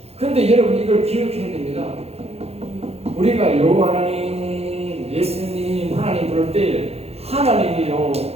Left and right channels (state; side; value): late; left; 0.30 ms